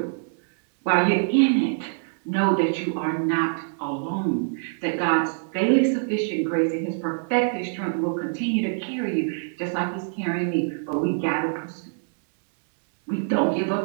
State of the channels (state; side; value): silent; left; digital silence